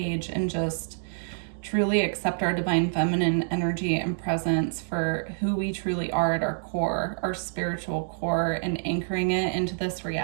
and just truly accept our divine feminine energy and presence for who we truly are at our core, our spiritual core, and anchoring it into this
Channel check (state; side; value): silent; left; digital silence